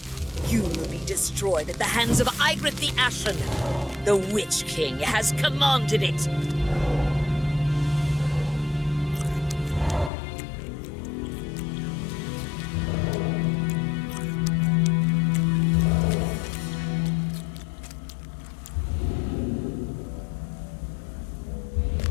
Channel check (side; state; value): right; drops out; at 10.1 s